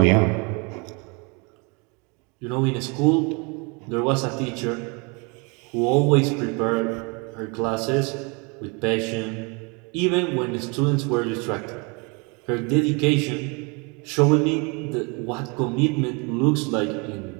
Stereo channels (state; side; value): quieter; left; 31.2 dB